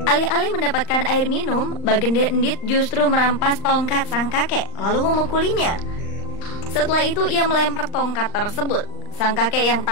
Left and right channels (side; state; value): right; late; 39 ms